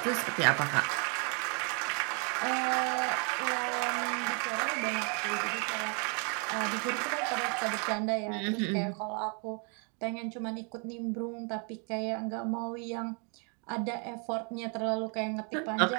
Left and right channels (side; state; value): left; quieter; 37.2 dB